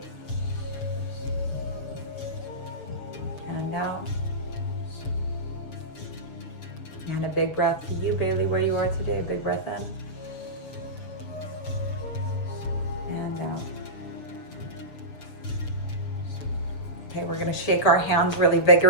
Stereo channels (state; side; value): late; right; 6.9 ms